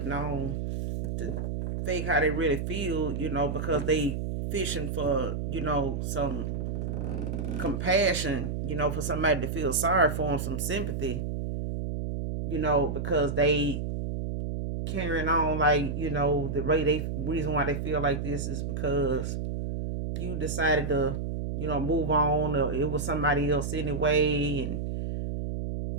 on to fake how they really feel, you know, because they fishing for, you know, some compassion, you know, for somebody to feel sorry for them, some sympathy, you know, because they carrying on like, you know, the reason why they feel like this is because you decided to, you know, move on, or it was somebody else anyway, and,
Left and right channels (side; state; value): right; noise; hum, 3 dB below the sound